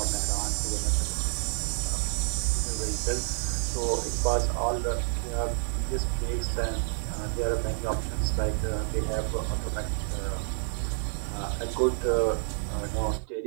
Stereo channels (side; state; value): left; silent; digital silence